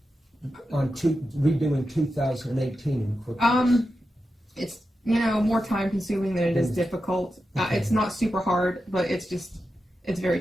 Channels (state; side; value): normal; both; correlation 0.90